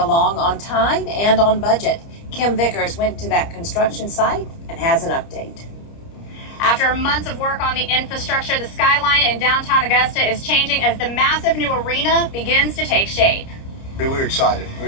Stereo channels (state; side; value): late; right; 30 ms